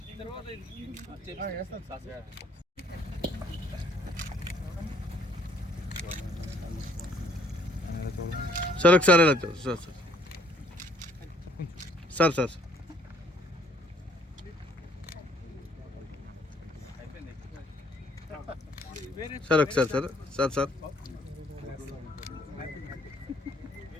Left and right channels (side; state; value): both; normal; correlation 0.63